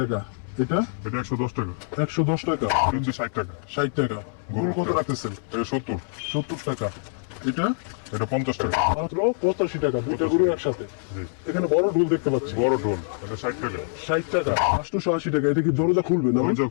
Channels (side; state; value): right; silent; 62 dB below the other